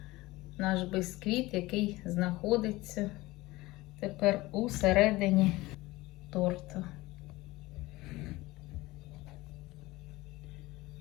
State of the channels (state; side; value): quieter; right; 19.8 dB